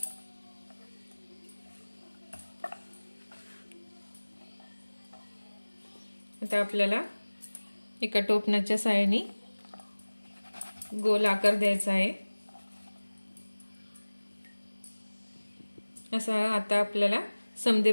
आता आपल्याला एका टोपणाच्या साहाय्याने गोल आकार द्यायचा आहे। असा आता आपल्याला समदे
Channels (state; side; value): inverted; both; correlation -1.00